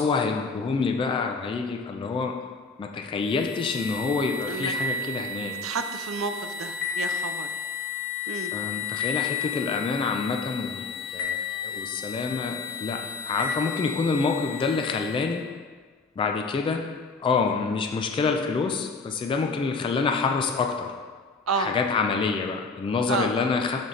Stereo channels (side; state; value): right; quieter; 3.9 dB